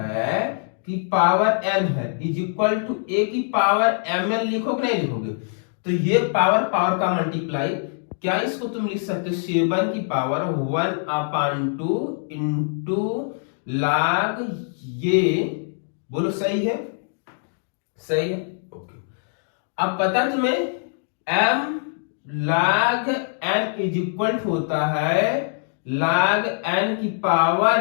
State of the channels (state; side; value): silent; right; digital silence